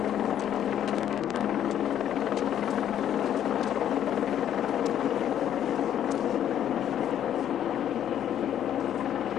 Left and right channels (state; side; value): quieter; right; 10.3 dB